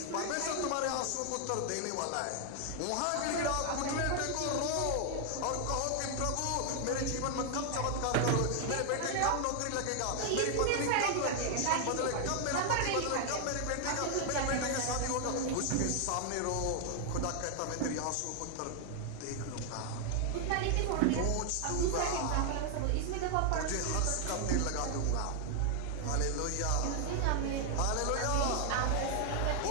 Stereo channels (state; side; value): different; both; correlation 0.00